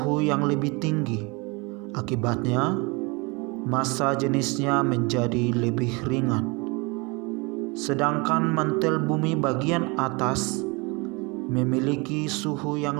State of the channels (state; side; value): quieter; left; 27.9 dB